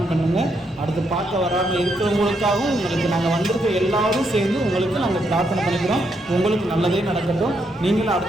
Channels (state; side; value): normal; both; correlation 0.78